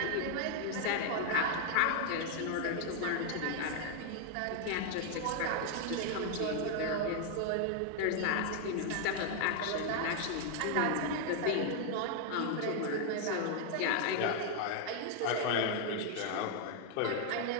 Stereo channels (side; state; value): both; different; correlation 0.00